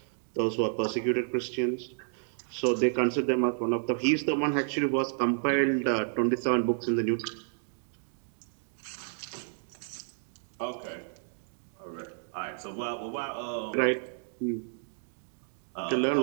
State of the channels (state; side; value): silent; left; digital silence